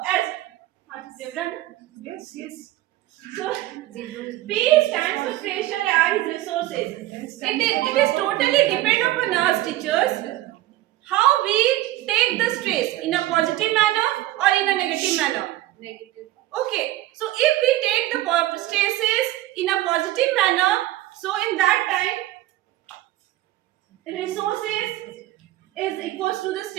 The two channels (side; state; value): left; quieter; 15.7 dB